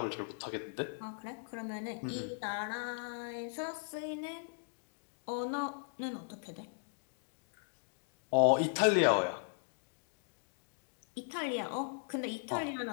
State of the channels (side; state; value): right; silent; digital silence